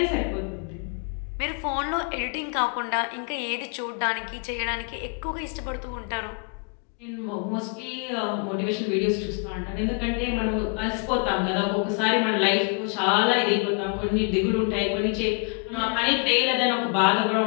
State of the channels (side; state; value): right; quieter; 38.0 dB